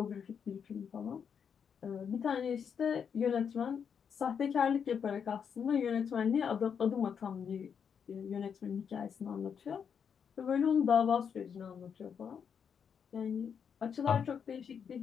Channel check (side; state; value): right; quieter; 7.2 dB